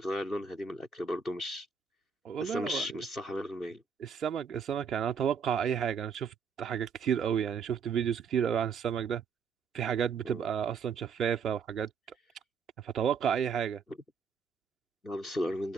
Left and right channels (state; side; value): quieter; left; 6.0 dB